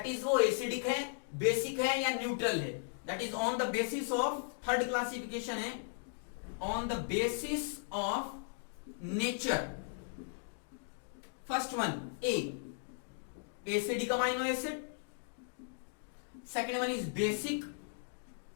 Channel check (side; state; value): right; silent; digital silence